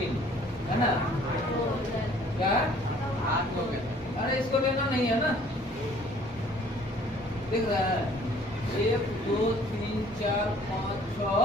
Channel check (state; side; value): normal; both; correlation 0.56